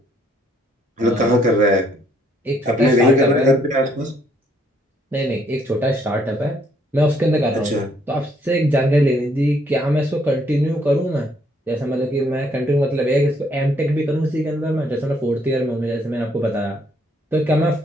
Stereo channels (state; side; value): normal; both; correlation 0.68